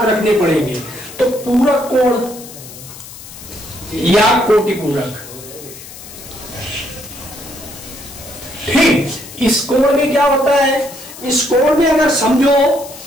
रखने पड़ेंगे। तो पूरक कोण या कोटिपूरक, ठीक, इस कोण में क्या होता है, इस कोण में अगर समझो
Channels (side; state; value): left; noise; hiss, 16 dB below the sound